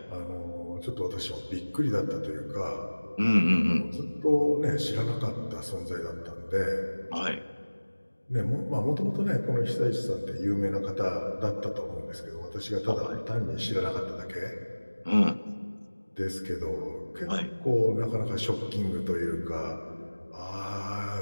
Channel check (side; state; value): both; inverted; correlation -1.00